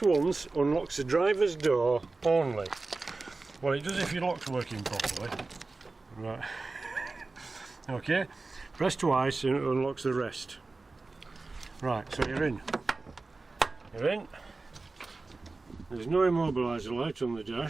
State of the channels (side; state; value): left; quieter; 3.6 dB